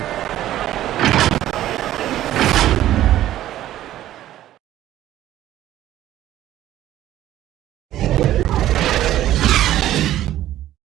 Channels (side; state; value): left; quieter; 13.3 dB